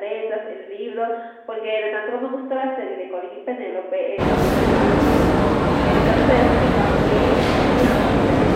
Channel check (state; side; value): identical; both; correlation 1.00